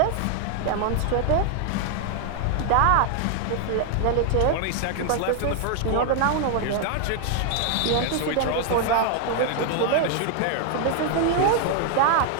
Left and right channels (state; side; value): different; both; correlation 0.00